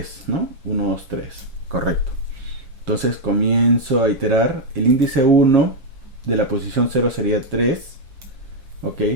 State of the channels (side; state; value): left; late; 7.4 ms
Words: ¿no? 1, 2, 3, correcto. Entonces comienzo a iterar. El índice 1 de la posición 0 sería 3, ok.